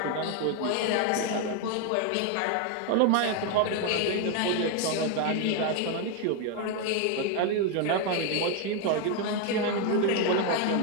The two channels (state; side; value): different; both; correlation 0.01